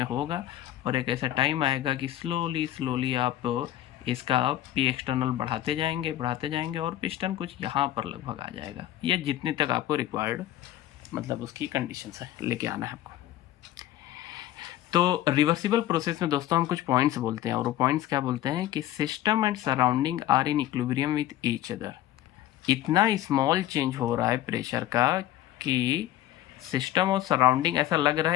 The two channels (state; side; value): quieter; right; 13.5 dB